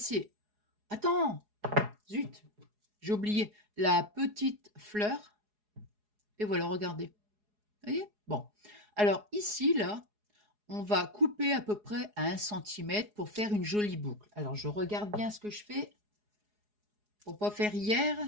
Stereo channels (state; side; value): late; left; 4.8 ms